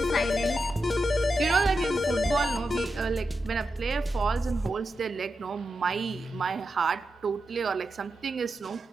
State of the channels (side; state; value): both; normal; correlation 0.88